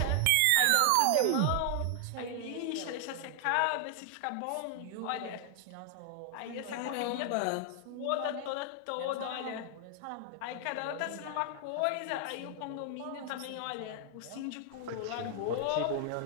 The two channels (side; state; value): both; different; correlation 0.00